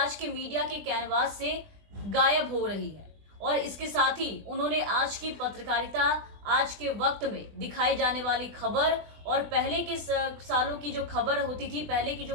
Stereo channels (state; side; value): late; left; 20 ms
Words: के मीडिया के कैनवास से गायब हो रही है। और इसके साथ ही उन्होंने आज की पत्रकारिता, आज के वक्त में दिखाई जाने वाली खबर और पहले के सालों की जो खबर होती थी, पहले की